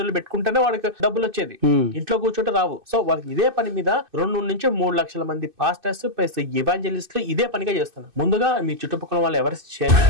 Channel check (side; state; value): left; late; 2.6 ms